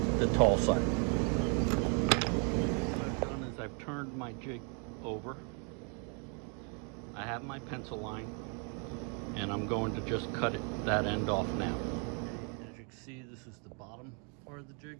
tall side. What I've done is I've turned my jig over. I have my pencil line, and I'm going to just cut that end off now. As you can see, this is the bottom part of the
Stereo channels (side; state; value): left; quieter; 37.8 dB